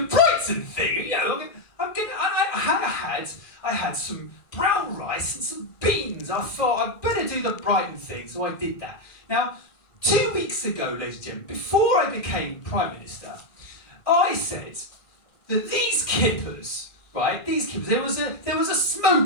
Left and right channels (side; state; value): right; late; 1.6 ms